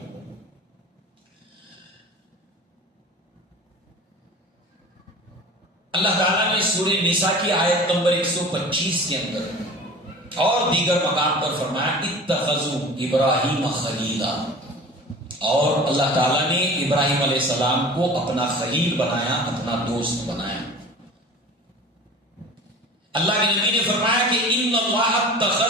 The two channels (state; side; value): normal; both; correlation 0.40